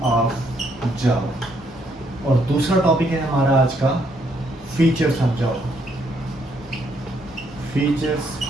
और दूसरा टॉपिक है हमारा आज का फीचर्स ऑफ जावा।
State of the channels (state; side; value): normal; both; correlation 0.71